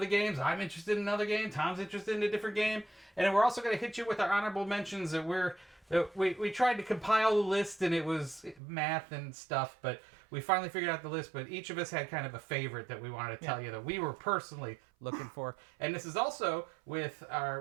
the games, I'm interested in another game, Tom's interested in a different game, and then we're also going to hit you with our honorable mentions that we tried to compile the list and it was math and stuff, but we finally figured out the list, but each of us had kind of a favorite that we wanted to tell you that we were personally looking for. And this is also with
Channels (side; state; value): left; drops out; at 8.6 s